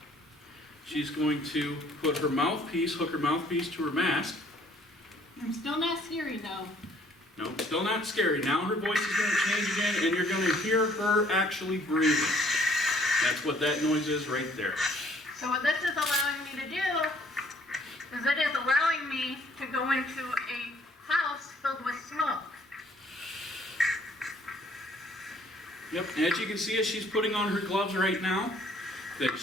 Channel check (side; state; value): both; normal; correlation 0.61